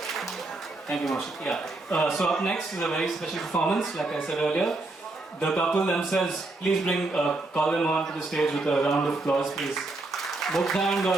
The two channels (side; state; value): left; quieter; 3.1 dB